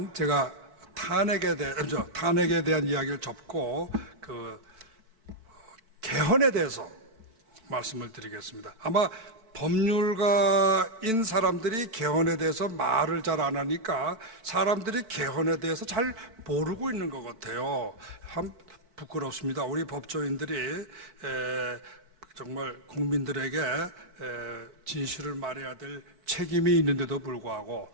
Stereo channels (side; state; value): left; late; 4.5 ms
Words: 제가 탄핵에 대한 이야기를 접고 개헌에 대해서 말씀을 드리겠습니다. 아마 법률가인 사람들이 개헌에 대해서 말을 잘 안 하니까 사람들이 개헌에 대해서 잘 모르고 있는 것 같아요. 참 부끄럽습니다. 우리 법조인들이 정말 국민들에게 진실을 말해야 될 책임이 있는데도 불구하고